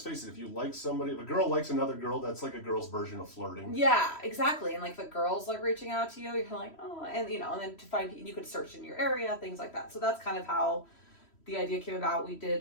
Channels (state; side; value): late; right; 3.1 ms